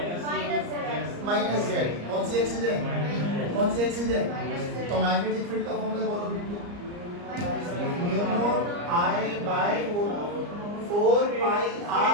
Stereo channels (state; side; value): late; left; 34 ms